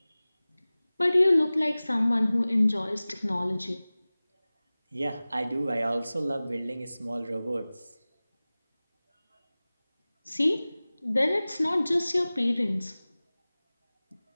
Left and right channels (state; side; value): inverted; both; correlation -0.98